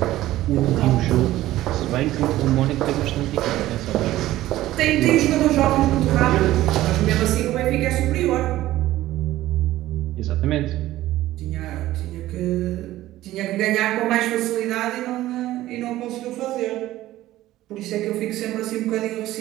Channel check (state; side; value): quieter; left; 15.3 dB